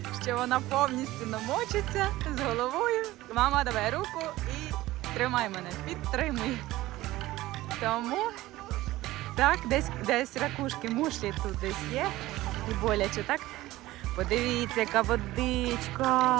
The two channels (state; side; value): quieter; left; 17.1 dB